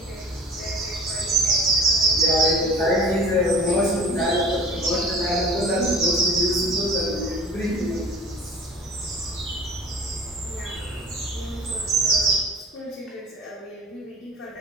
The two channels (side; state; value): both; normal; correlation 0.43